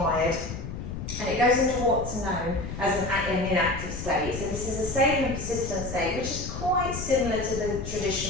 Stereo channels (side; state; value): left; noise; rumble, 7 dB below the sound